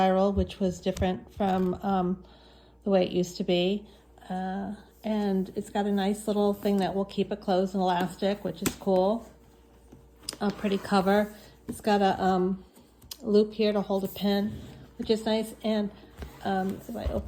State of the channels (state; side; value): identical; both; correlation 1.00